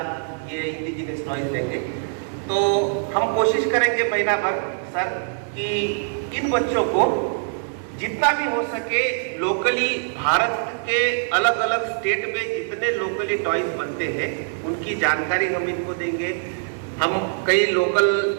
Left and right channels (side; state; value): left; silent; digital silence